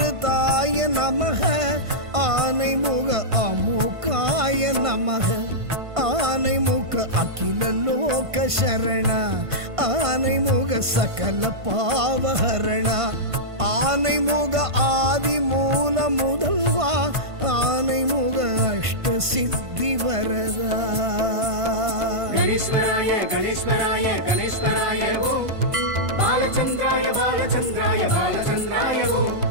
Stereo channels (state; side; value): late; left; 1.5 ms